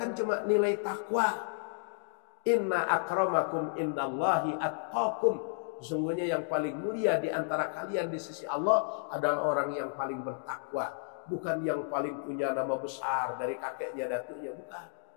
cuma nilai takwa. Inna akramakum indallahi atqakum. Sesungguhnya yang paling mulia di antara kalian di sisi Allah adalah orang yang paling bertakwa. Bukan yang paling punya nama besar dari kakeknya, datuknya, bukan.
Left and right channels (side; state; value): right; silent; digital silence